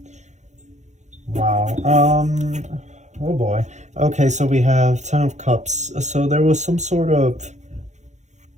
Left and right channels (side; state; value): left; late; 0.34 ms